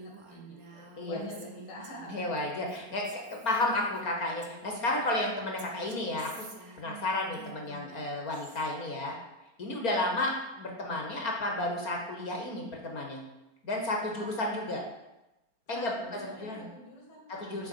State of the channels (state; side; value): late; right; 4.4 ms